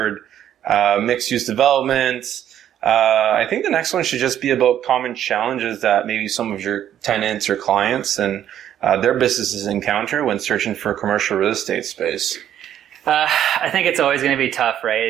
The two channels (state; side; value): quieter; left; 10.7 dB